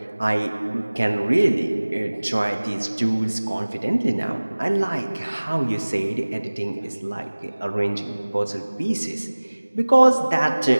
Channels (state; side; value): inverted; both; correlation -1.00